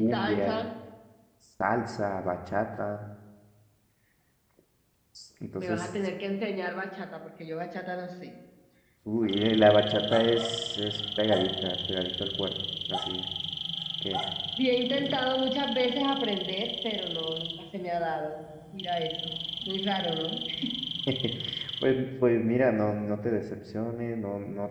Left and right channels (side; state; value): both; identical; correlation 1.00